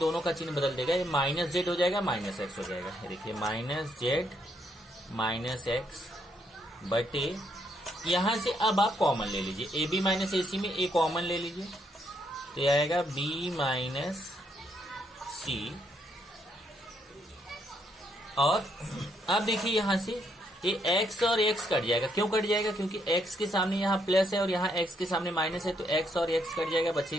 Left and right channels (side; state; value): both; normal; correlation 0.74